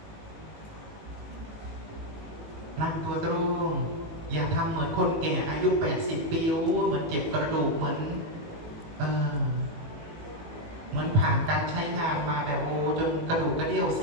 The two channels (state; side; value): late; left; 19 ms